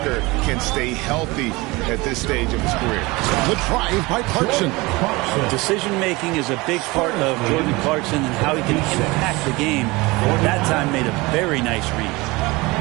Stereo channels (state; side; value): quieter; left; 23.0 dB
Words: can stay healthy at this stage of his career. The drive by Clarkson. Decision-making is a big part of Jordan Clarkson and how he can impact the game. That time made a very nice read.